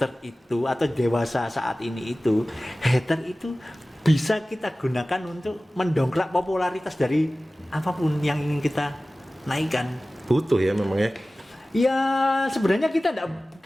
itu atau dewasa saat ini itu, hater itu bisa kita gunakan untuk mendongkrak popularitas dari apapun yang ingin kita naikkan. Butuh ya memang ya. Ya sebenarnya kita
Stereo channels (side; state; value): both; normal; correlation 0.97